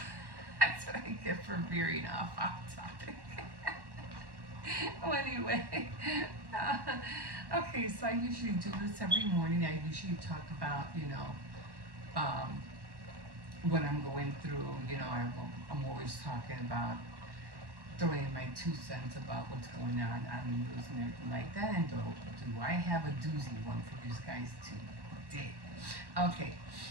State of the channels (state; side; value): late; left; 1.1 ms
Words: That's what I get for veering off topic. Well, anyway, okay, so I usually do this every morning. I usually talk about, um, what I'm going through. I'm always talking about throwing my 2 cents about what's going on the news and everything like that. And do I have a doozy one for you guys today? Okay,